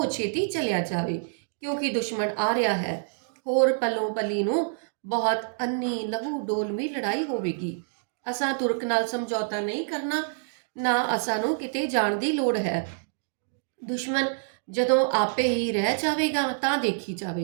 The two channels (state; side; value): silent; left; digital silence